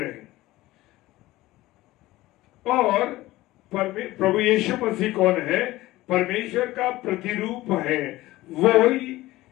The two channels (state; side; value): quieter; right; 17.6 dB